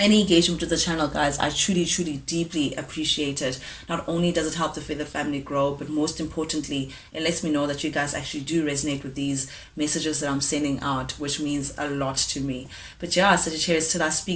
engagement with the channel, guys, I truly deeply appreciate it. Not only does it help the Feather family grow, but most importantly, it lets me know that you guys actually do resonate with these messages that I'm sending out, which means a lot to me. But yeah, Sagittarius, till I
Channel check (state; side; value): identical; both; correlation 1.00